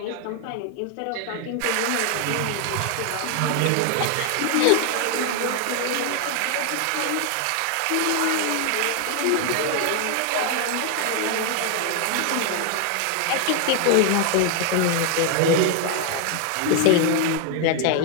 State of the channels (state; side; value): different; both; correlation 0.00